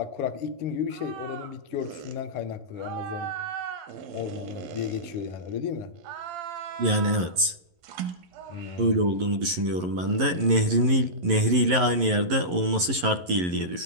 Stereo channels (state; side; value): late; left; 11 ms